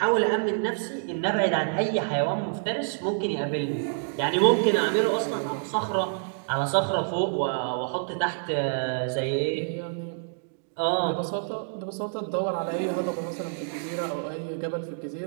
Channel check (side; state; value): left; silent; digital silence